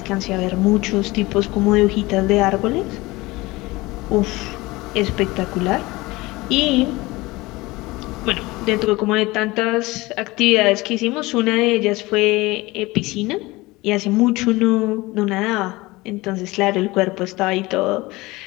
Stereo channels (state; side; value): quieter; right; 21.2 dB